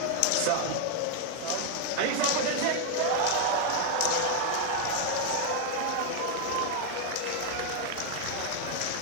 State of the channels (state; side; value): different; both; correlation 0.00